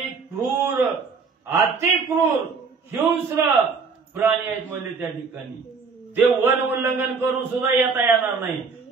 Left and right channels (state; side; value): quieter; left; 5.0 dB